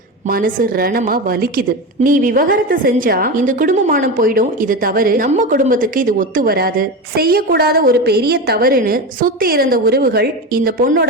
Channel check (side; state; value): both; normal; correlation 0.21